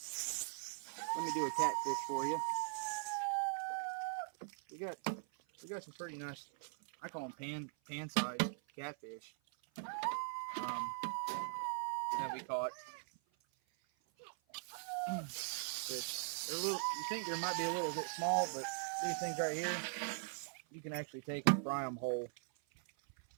me do a catfish for you. We got some pretty nice, I call them pan-sized catfish that we caught. They're a little, you think they might be a little bit small, but these things right here, you can actually take and fry them whole.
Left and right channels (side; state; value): left; silent; 50 dB below the other